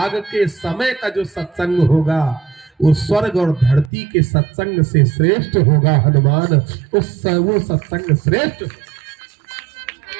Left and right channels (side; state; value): left; drops out; at 3.9 s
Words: के समय का जो सत्संग होगा वो स्वर्ग और धरती के सत्संग से श्रेष्ठ होगा। हनुमान वो सत्संग श्रेष्ठ।